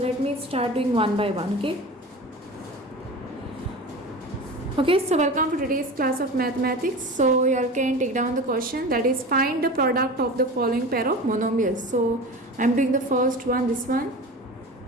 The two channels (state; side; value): normal; both; correlation 0.32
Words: let me start doing one by one, okay? Okay, so welcome for today's class of mathematics. So you all can take down the question, that is find the product of the following pair of monomials. So I'm doing the first one, this one.